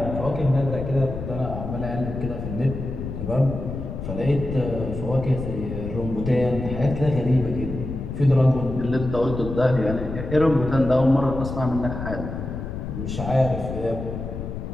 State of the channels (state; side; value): noise; left; rumble, 6 dB below the sound